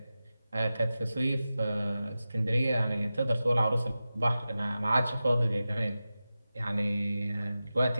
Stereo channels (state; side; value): inverted; both; correlation -0.94